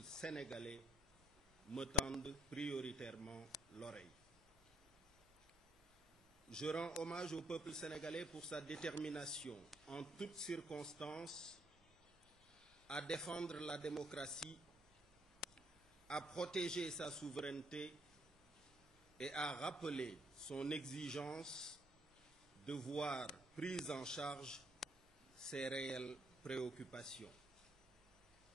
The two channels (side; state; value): both; normal; correlation 0.68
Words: sénégalais me tende prioritairement l'oreille. Je rends hommage au peuple sénégalais pour sa détermination en toutes circonstances à défendre la démocratie, à protéger sa souveraineté et à rappeler son exigence de voir prises en charge ses réelles préoccupations.